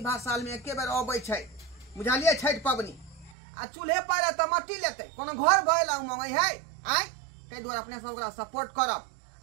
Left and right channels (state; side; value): drops out; left; at 3.4 s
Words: साल में एके बेर अबै छै बुझलिए छठ पबनी आ चूल्हे पारे तो मट्टी लेते कोनो घर भइला उमंग है तै दुआरे अपने सब ओकरा सपोर्ट करब